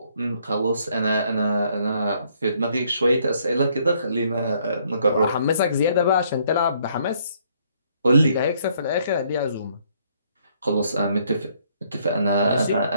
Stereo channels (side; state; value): both; inverted; correlation -0.67